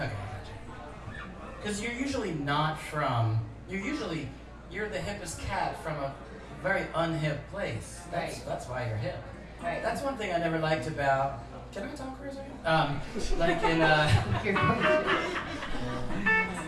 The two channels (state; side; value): identical; both; correlation 1.00